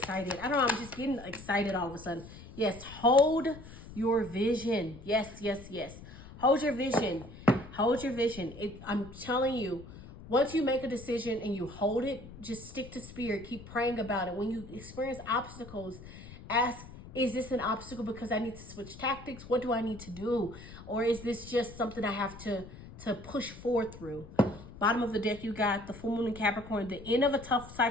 I don't know. I'm just getting excited all of a sudden. Yes, hold your vision. Yes, yes, yes. Hold your vision. Hold your vision. I'm telling you, once you make a decision and you hold it, just stick to Spirit. Keep praying about it. When you experience obstacles, ask, is this an obstacle because I need to switch tactics? What do I need to do? Or is this just something I have to push forward through? Bottom of the deck, you got the full moon in Capricorn. The end of a tough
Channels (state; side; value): noise; left; rumble, 16 dB below the sound